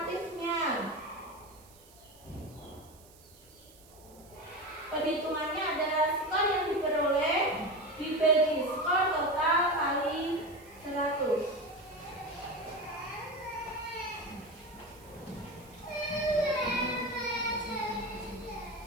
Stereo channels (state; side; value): noise; right; hiss, 24 dB below the sound